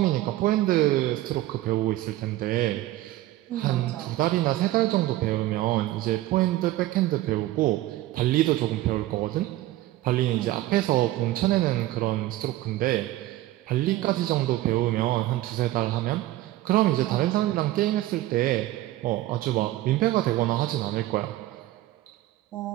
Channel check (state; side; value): quieter; left; 16.0 dB